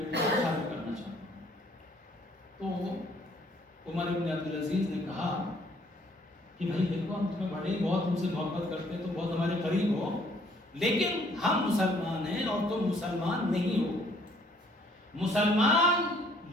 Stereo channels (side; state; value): both; normal; correlation 0.62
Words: کو شادی کرنا چاہتا ہوں۔ تو عمر ابن عبدالعزیز نے کہا کہ بھائی دیکھو، ہم تمہیں بڑے بہت تم سے محبت کرتے ہیں، تو بہت ہمارے قریب ہو، لیکن ہم مسلمان ہیں اور تم مسلمان نہیں ہو۔ مسلمان